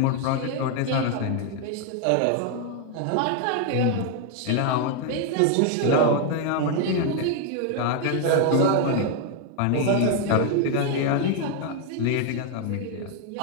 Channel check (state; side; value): different; both; correlation 0.00